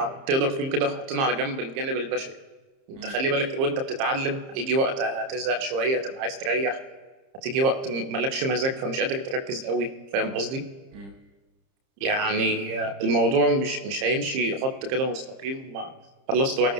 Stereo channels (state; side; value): late; left; 30 ms